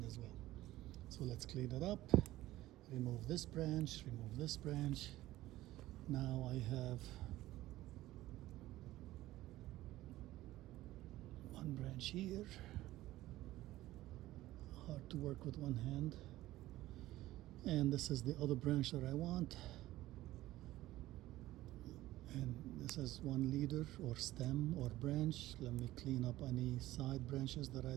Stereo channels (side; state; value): left; quieter; 16.1 dB